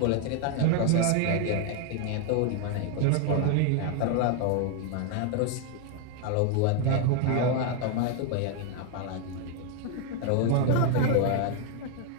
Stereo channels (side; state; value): both; different; correlation 0.01